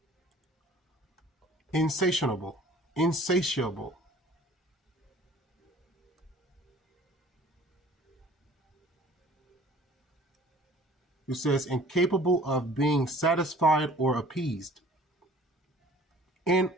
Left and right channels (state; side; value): normal; both; correlation 0.50